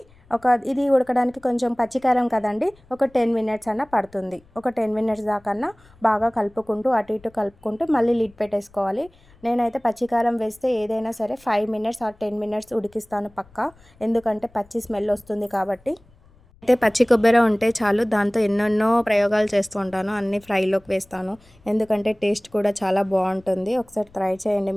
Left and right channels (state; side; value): noise; left; rumble, 29 dB below the sound